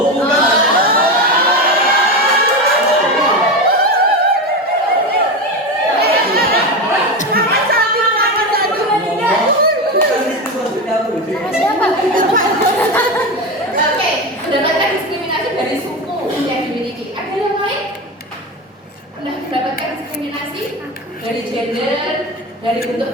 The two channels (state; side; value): normal; both; correlation 0.19